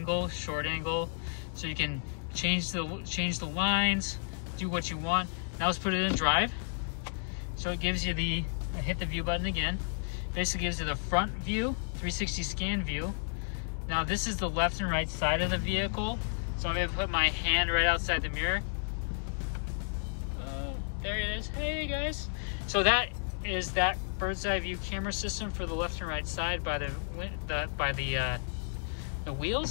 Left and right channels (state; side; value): silent; right; digital silence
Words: short angle, so you can change the lines, do what you want. Now let's put it in drive. So it gives you the, hit the view button again. Basically gives you the front view, 360 scan view. Now this is the left and right side of the vehicle. So I'm gonna put my hand right outside the mirror. There it is. Hey guys. So that is that bird's eye view camera system for the left and right side by the